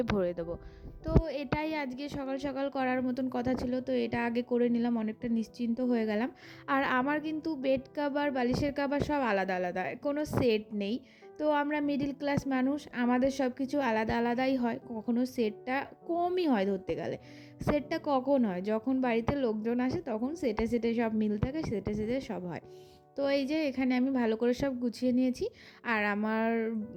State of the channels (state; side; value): identical; both; correlation 1.00